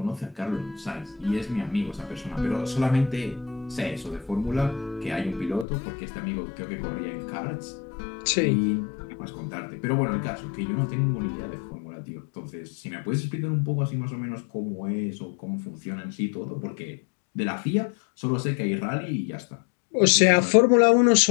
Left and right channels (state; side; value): drops out; right; at 5.7 s